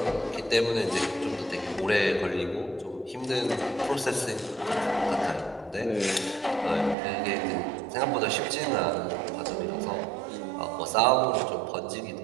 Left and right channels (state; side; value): drops out; left; at 7.0 s